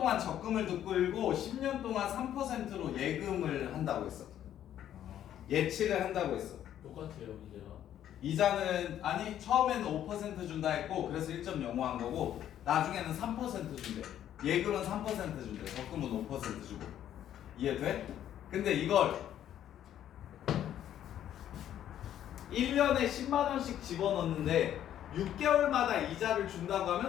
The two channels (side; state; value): right; quieter; 11.0 dB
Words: 적금을 끌고 10년 동안 3%로 예금을 한다고 했어. 예치를 한다고 했어. 똑같아요 이제가. 이자는 아니 처음에는 5% 준다 했고 그래서 1.05 한 거고 나중에는 3% 준대. 예금은 3% 준대. 적금은 5% 주고. 이해돼? 근데 이걸 1년에 10만 원씩 집어넣는데 6개월마다 이자를 준다고